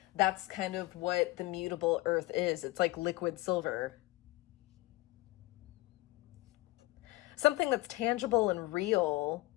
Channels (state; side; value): quieter; right; 20.5 dB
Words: that's kind of what the mutable earth is. It's like liquid silver. Something that's tangible and real,